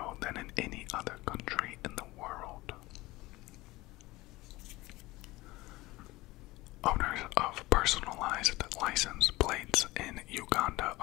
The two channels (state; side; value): quieter; right; 19.9 dB